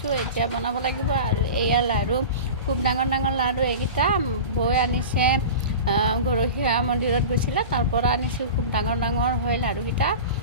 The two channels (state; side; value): inverted; both; correlation -0.32